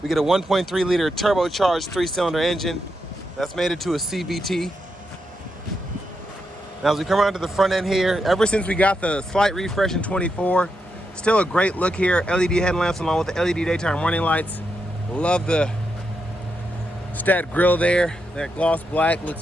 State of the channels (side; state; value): both; normal; correlation 0.84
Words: we get a 1.3 liter turbocharged 3-cylinder engine. That's made it to a CVT. Now as we come around to the front end here, ever since we got the slight refresh in 24, still a great look here. LED headlamps along with the LED daytime running lights. Love the stat grille there. That gloss black